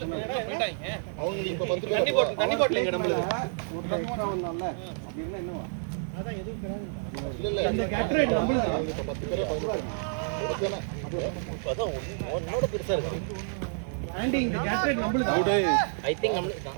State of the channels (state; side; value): silent; left; digital silence